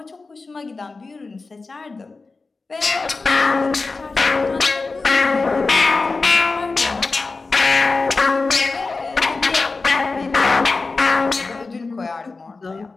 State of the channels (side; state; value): right; quieter; 3.9 dB